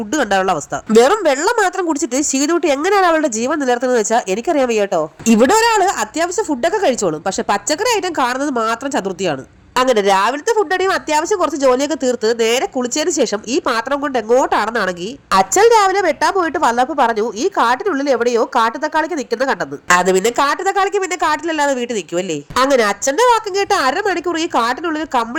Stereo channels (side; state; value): both; identical; correlation 1.00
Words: കണ്ടാലുള്ള അവസ്ഥ. വെറും വെള്ളം മാത്രം കുടിച്ചിട്ട് ശീതുട്ടി എങ്ങനെയാണ് അവളുടെ ജീവൻ നിലനിർത്തുന്നത് വെച്ചാൽ എനിക്കറിയാൻ വയ്യ കേട്ടോ. ഇവിടെ ഒരാള് അത്യാവശ്യം ഫുഡൊക്കെ കഴിച്ചോളും, പക്ഷെ പച്ചക്കറി ഐറ്റം കാണുന്നത് മാത്രം ചതുർത്ഥിയാണ്. അങ്ങനെ രാവിലത്തെ ഫുഡടിയും അത്യാവശ്യം കുറച്ച് ജോലിയൊക്കെ തീർത്ത് നേരെ കുളിച്ചതിന് ശേഷം ഈ പാത്രം കൊണ്ട് എങ്ങോട്ടാണെന്നാണെങ്കിൽ അച്ഛൻ രാവിലെ വെട്ടാൻ പോയിട്ട് വന്നപ്പോൾ പറഞ്ഞു ഈ കാട്ടിനുള്ളിൽ എവിടെയോ കാട്ടുതക്കാളിക്ക് നിൽക്കുന്ന കണ്ടെന്ന്. അത് പിന്നെ കാട്ടുതക്കാളിക്ക് പിന്നെ കാട്ടിലല്ലാതെ വീട്ടിൽ നിൽക്കുമല്ലേ. അങ്ങനെ അച്ഛന്റെ വാക്കും കേട്ട് 1/2 മണിക്കൂർ ഈ കാട്ടിനുള്ളിൽ